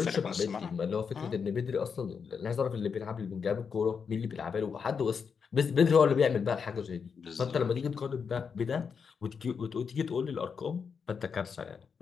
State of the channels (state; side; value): quieter; right; 6.1 dB